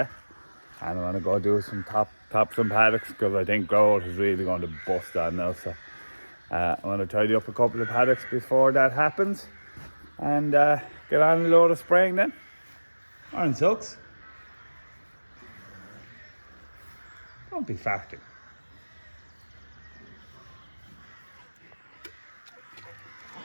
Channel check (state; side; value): inverted; both; correlation -1.00